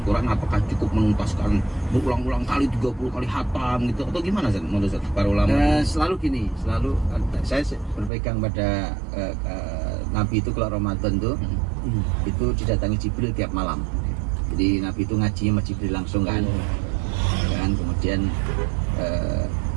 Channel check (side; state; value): left; drops out; at 8.1 s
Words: Quran, apakah cukup menuntaskan berulang-ulang kali 30 kali hatam gitu atau gimana Ustaz? Menurut Ustaz, para ulama? Selalu gini, saya berpegang pada Nabi itu kalau Ramadan tuh itu didatangi Jibril tiap malam. Jadi Nabi itu ngajinya sama Jibril langsung kan. Kemudian